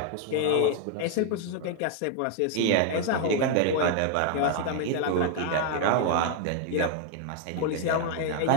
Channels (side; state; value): both; different; correlation 0.00